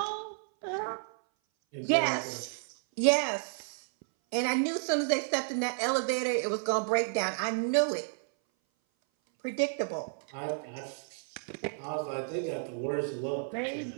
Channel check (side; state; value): left; silent; 57 dB below the other